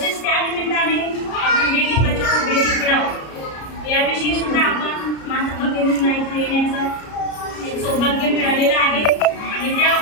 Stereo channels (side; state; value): right; late; 33 ms